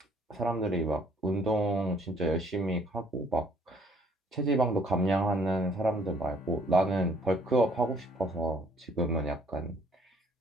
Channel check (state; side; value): normal; both; correlation 0.61